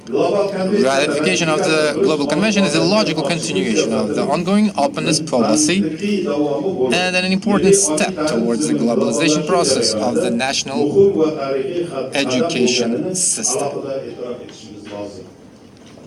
Ratification of the Global Convention is a logical continuation of the ongoing openness policy and an important step towards the globalization process of the national education system.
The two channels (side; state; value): both; identical; correlation 1.00